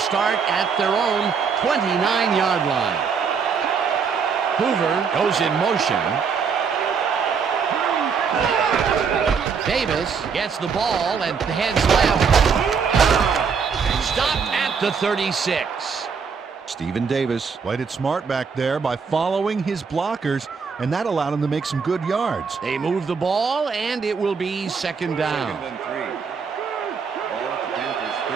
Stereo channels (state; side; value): quieter; left; 5.9 dB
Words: at their own 29-yard line. Hoover goes in motion. Davis gets the ball and heads left. Stopped at the 36. Stephen Davis Played it smart back there by following his blockers, and that allowed him to make some good yards. They move the ball, and it will be second down. Second and 3. Ball at the Panthers,